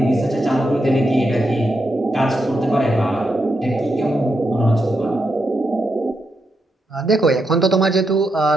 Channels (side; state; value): both; normal; correlation 0.84